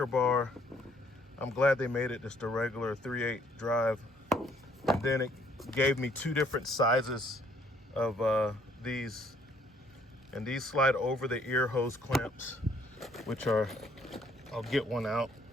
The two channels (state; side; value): normal; both; correlation 0.64